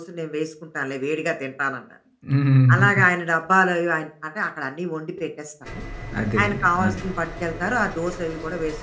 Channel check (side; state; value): both; identical; correlation 1.00